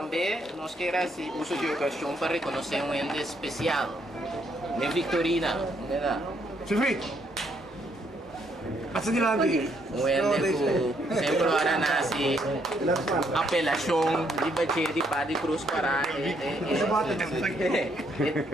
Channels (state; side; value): normal; both; correlation 0.72